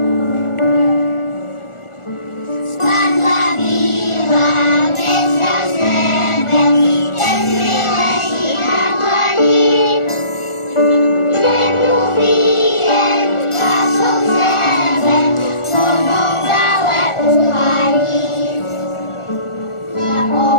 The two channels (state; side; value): late; right; 1.4 ms